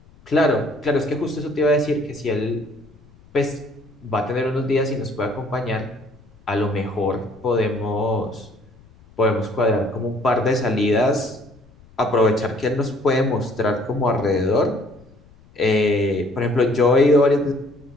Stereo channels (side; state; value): left; noise; rumble, 26 dB below the sound